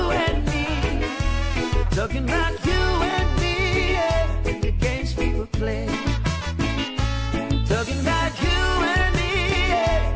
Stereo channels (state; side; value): identical; both; correlation 1.00